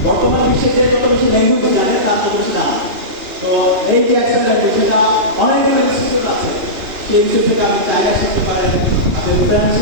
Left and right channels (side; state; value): left; late; 2.9 ms